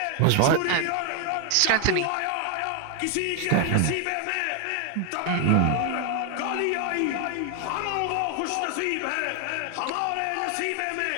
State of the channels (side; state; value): both; different; correlation 0.00